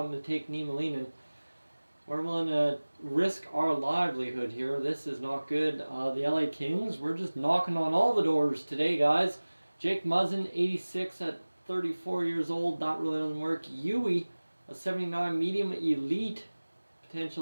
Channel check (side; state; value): both; inverted; correlation -1.00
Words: to take Niemelainen? We're willing to risk our livelihood here. This is not good. The LA Kings, we're just knocking on all the doors today, guys. Jake Muzzin, 86 at 34 years old. That really doesn't work. Yui, a 79 medium elite